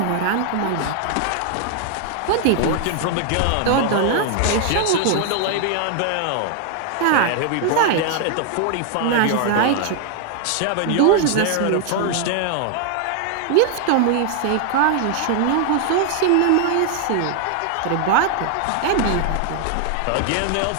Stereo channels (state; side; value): different; both; correlation 0.00